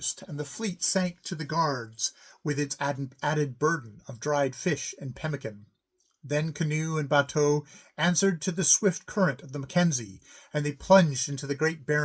and the fleet sank to the guards with its added burden of dried fish and pemmican. Then canoe and bateau answered to the swift current of the Mackenzie, and they plunged into the great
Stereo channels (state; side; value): identical; both; correlation 1.00